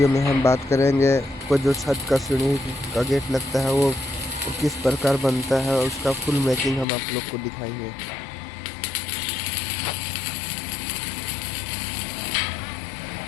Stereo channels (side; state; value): right; drops out; at 6.9 s